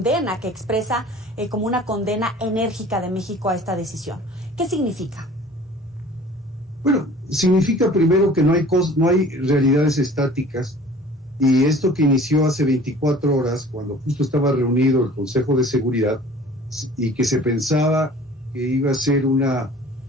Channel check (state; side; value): normal; both; correlation 0.47